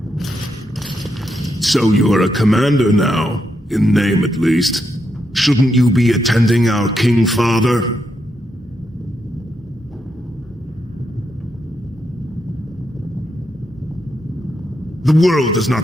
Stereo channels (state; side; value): normal; both; correlation 0.82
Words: So you're a commander now, in name at least. Shouldn't you be attending our King Father? The world does